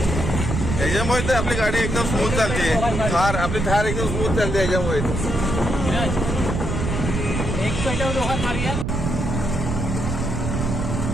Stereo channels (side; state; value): right; noise; rumble, 2 dB below the sound